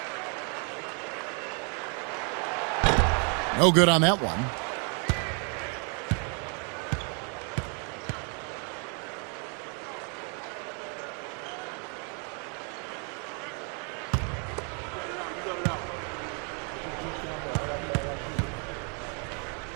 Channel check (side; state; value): left; quieter; 37.9 dB